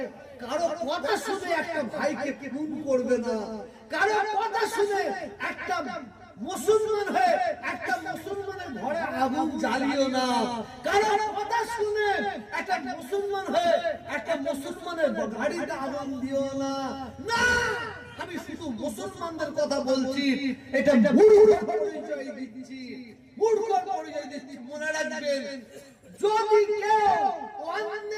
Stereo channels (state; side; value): identical; both; correlation 1.00